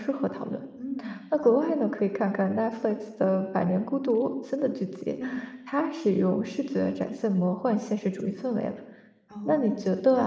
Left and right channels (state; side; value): identical; both; correlation 1.00